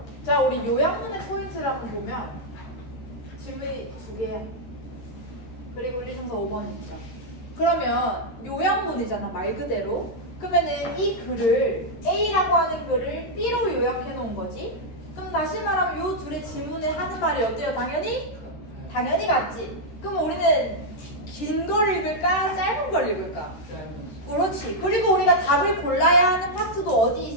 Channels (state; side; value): late; right; 13 ms